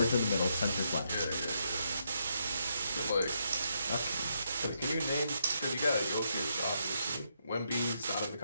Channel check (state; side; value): inverted; both; correlation -0.78